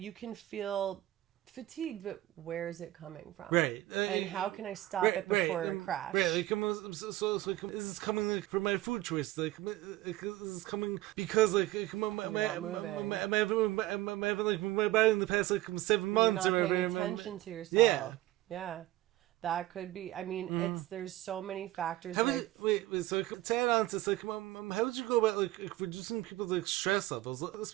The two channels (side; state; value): left; quieter; 16.2 dB